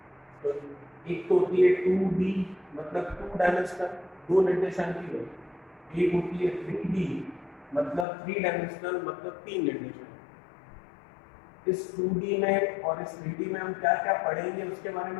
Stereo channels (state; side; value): drops out; right; at 8.1 s